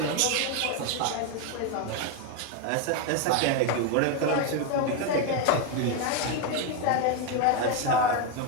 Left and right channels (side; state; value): both; different; correlation 0.02